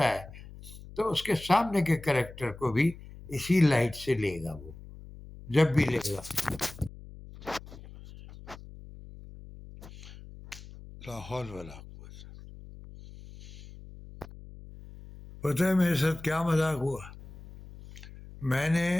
ہے تو اس کے سامنے کے کریکٹر کو بھی اسی لائٹ سے لے گا، وہ جب بھی لے گا. لاہور والا پتہ ہے میرے ساتھ کیا مذاق ہوا؟ میں نے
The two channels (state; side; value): noise; left; hum, 17 dB below the sound